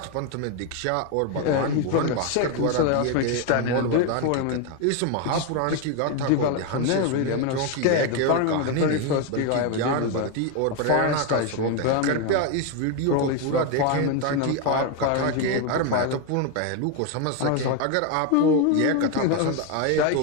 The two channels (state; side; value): different; both; correlation 0.01